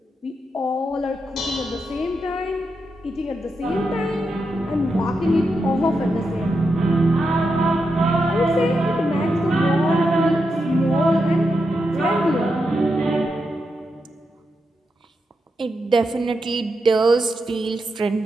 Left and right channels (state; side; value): normal; both; correlation 0.86